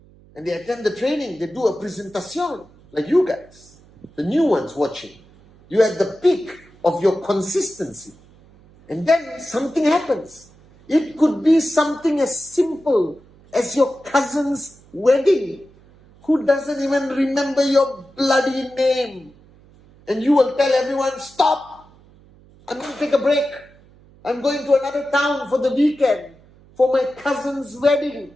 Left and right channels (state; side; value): noise; right; hum, 27 dB below the sound